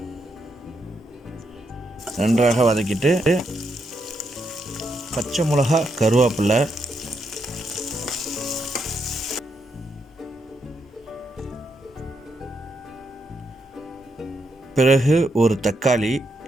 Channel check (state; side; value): normal; both; correlation 0.80